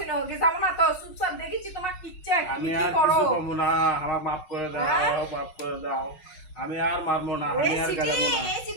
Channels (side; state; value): right; late; 5.4 ms